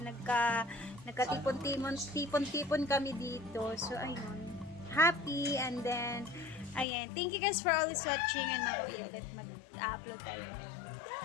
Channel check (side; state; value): right; drops out; at 6.9 s